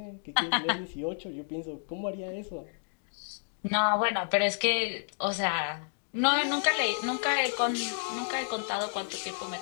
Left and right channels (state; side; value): silent; right; 57 dB below the other